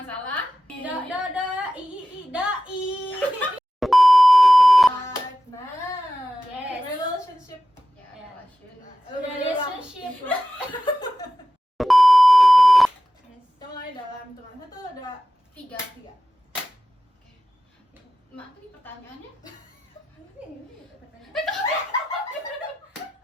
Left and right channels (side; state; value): both; normal; correlation 0.93